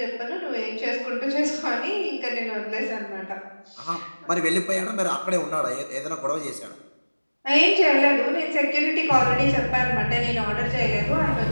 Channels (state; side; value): inverted; both; correlation -1.00